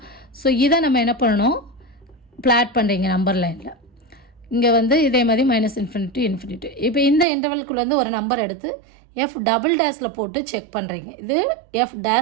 ஸோ இதை நம்ம என்ன பண்ணணும், பிளாட் பண்ணுறீங்க நம்பர் லைனில். இங்கே வந்து இதே மாதிரி -∞ இப்போ இந்த இன்டர்வல்குள்ளே ஒரு நம்பர் எடுத்து எஃப் டபுள் டேஸில் போட்டு செக் பண்ணுறீங்க. இது எஃப்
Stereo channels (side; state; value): left; drops out; at 7.2 s